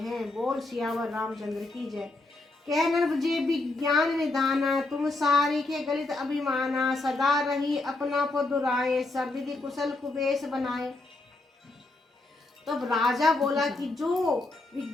बोल सियावर रामचंद्र की जय। कह नरभजे विज्ञान निधाना, तुम सारी के गलित अभिमाना। सदा रही अपना को दुराए, सब विधि कुशल कुबेश बनाए। तब राजा बोला कि जो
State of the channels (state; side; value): quieter; right; 3.0 dB